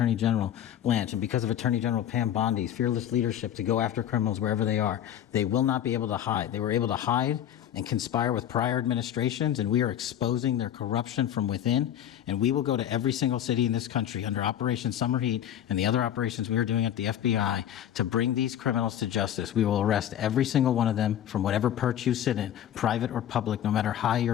General Blanche, and because of Attorney General Pam Bondi's fearless leadership to go after criminals wherever they are. They will not be able to hide. They were able to hide and conspire with prior administrations, and we are exposing their corruption from within. And we will go to every single city in this country under Operation Summer Heat and the other operations we are doing at the FBI to bring these criminals to justice. We will arrest every single one of them from whatever perch you sit in, private or public, no matter how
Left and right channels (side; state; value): right; quieter; 10.5 dB